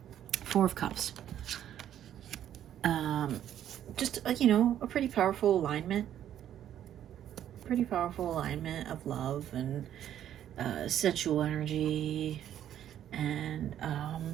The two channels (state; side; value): quieter; left; 10.8 dB